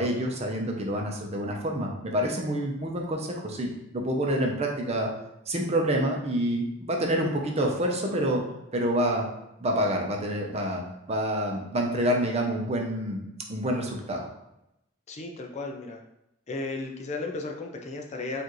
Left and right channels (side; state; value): both; normal; correlation 0.24